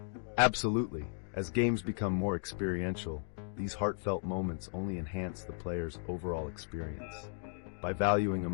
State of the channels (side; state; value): right; silent; digital silence